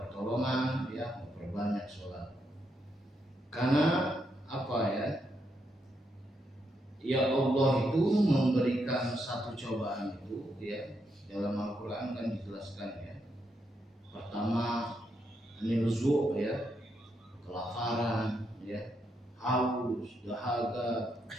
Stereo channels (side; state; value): both; normal; correlation 0.80